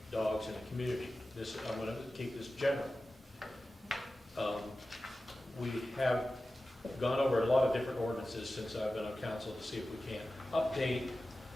dogs in the community. This, I'm going to keep this general. We have gone over a lot of different ordinances since I've been on council to see if we can update,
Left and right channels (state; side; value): normal; both; correlation 0.94